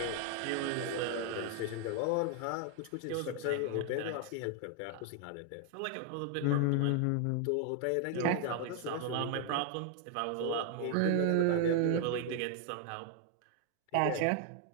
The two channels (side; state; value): both; different; correlation 0.00